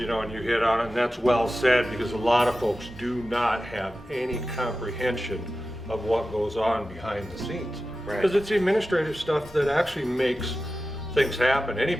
you hit on it, and that's well said, because a lot of folks do not have any comprehension of what goes on behind the scenes. Right. Because it's the administrative stuff that actually makes things happen.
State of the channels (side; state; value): both; normal; correlation 0.94